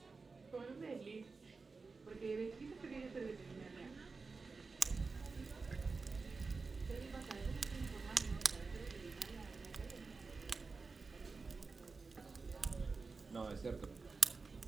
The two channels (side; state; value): left; quieter; 4.3 dB